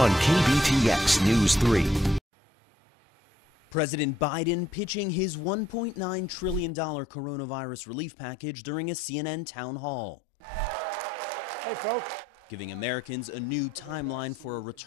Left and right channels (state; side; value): normal; both; correlation 0.69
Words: KBTX News 3. President Biden pitching his $1.9 trillion coronavirus relief package during a CNN town hall. Hey, folks. Giving Americans a new timeline for a